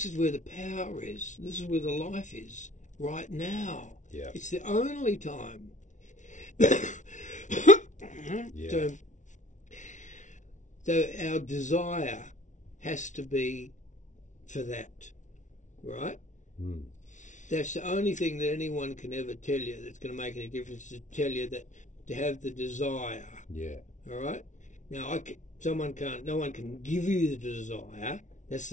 is where the power is. This is where the life is, right now. Yeah. It's the only time. Yeah. So our desire has to be for that, right? That's the only thing that anyone can ever tell you that's going to make any difference, to tell you that to have the desire. Yeah. All right. Now, no one can give you the desire. That's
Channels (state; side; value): late; right; 0.36 ms